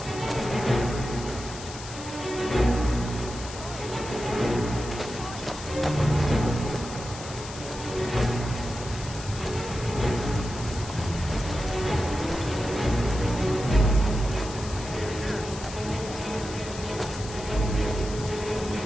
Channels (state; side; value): noise; left; hiss, 13 dB below the sound